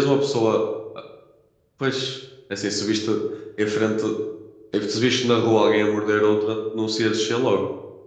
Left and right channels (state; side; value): identical; both; correlation 1.00